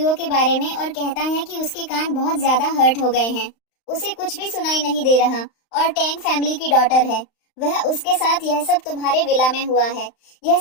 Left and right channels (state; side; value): late; right; 35 ms